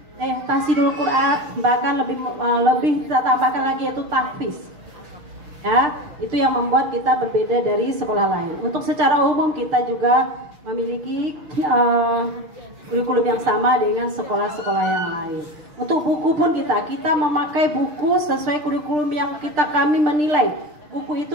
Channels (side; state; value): left; late; 6.6 ms